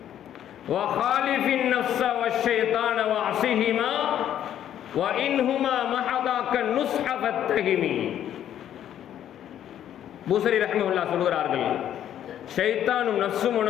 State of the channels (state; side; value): quieter; right; 10.7 dB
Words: வஹாலிஃபின் நஃப்ஸ வஷ்ஷைத்தான வஅஸிஹிமா வஇன்ஹுமா மஹதாக்க நுஸ்ஹ ஃபத்தஹிமி. பூசரி ரஹிமஹுல்லா சொல்கிறார்கள், ஷைத்தானும் நஃப்ஸும்